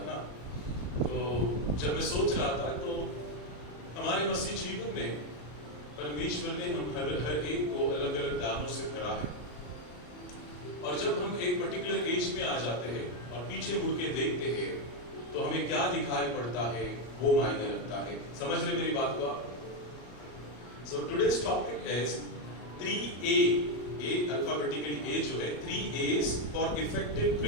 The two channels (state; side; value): late; right; 33 ms